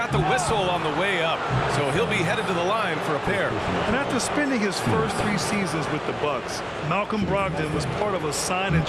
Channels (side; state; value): both; identical; correlation 1.00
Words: the whistle on the way up. So he'll be headed to the line for a pair. And after spending his first 3 seasons with the Bucks, Malcolm Brogdon was part of a sign and